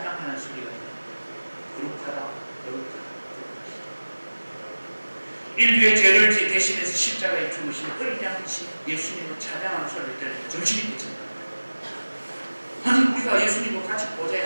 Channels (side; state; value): both; inverted; correlation -1.00